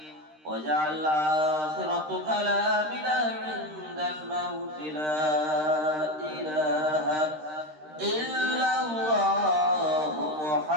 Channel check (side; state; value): left; late; 13 ms